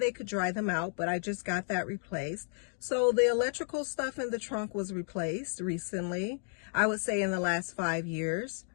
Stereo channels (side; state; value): right; silent; digital silence